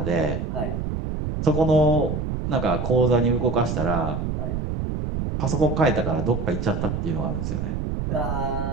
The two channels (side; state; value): right; noise; rumble, 3 dB below the sound